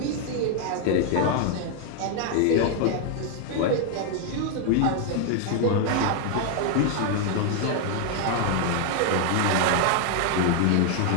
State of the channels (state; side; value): different; both; correlation 0.00